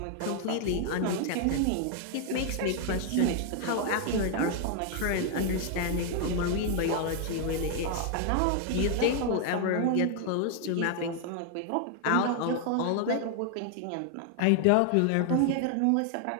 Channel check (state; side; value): different; both; correlation 0.00